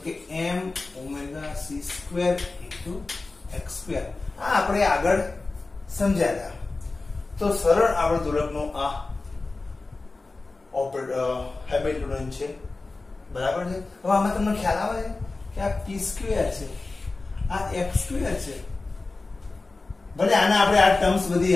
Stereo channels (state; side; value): quieter; right; 3.5 dB